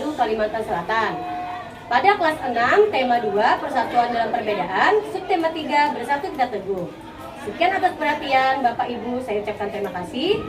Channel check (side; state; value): both; identical; correlation 1.00